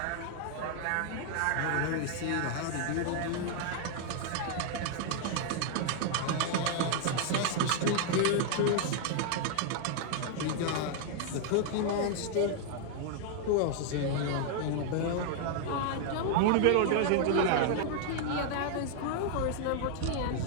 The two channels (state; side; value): different; both; correlation 0.00